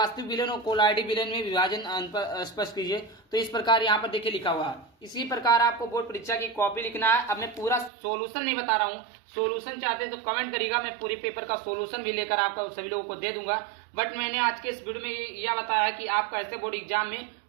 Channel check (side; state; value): left; drops out; at 7.9 s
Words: विलयन और कोलाइडी विलयन में विभाजन स्पष्ट कीजिए। तो इस प्रकार यहाँ पर देखिए लिखा हुआ है। इसी प्रकार आपको बोर्ड परीक्षा की कॉपी लिखना है। अब मैं पूरा सॉल्यूशन नहीं बता रहा हूँ, सॉल्यूशन चाहते हैं तो कमेंट करिएगा, मैं पूरे पेपर का सॉल्यूशन भी लेकर आपका सभी लोगों को दे दूंगा। बट मैंने आज के इस वीडियो में यह बताया है कि आप कैसे बोर्ड एग्जाम में